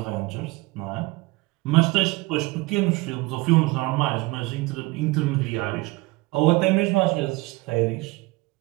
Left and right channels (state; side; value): quieter; left; 22.6 dB